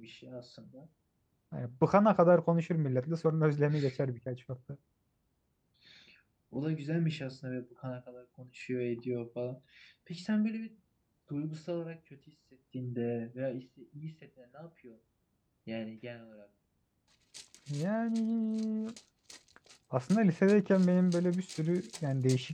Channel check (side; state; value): both; identical; correlation 1.00